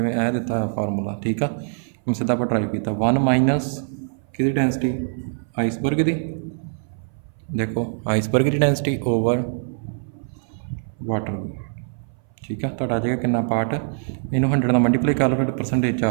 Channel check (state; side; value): silent; left; 59 dB below the other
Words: ਇਹ ਦਿੱਤਾ ਫਾਰਮੂਲਾ। ਠੀਕ ਆ, ਹੁਣ ਸਿੱਧਾ ਆਪਾਂ ਟਰਾਈ ਕੀਤਾ 1 ਮਾਈਨਸ ਕਿਹਦੀ ਡੈਂਸਿਟੀ ਆਈਸਬਰਗ ਦੀ, ਦੇਖੋ ਆਈਸਬਰਗ ਦੀ ਡੈਂਸਿਟੀ ओवर वाटर ਦੀ। ठीक है, ਤੁਹਾਡਾ ਆ ਜਾਏਗਾ कितना पार्ट, ਇਹਨੂੰ 100 ਨਾਲ ਮਲਟੀਪਲਾਈ ਕਰ ਲਓ ਫਿਰ परसेंटेज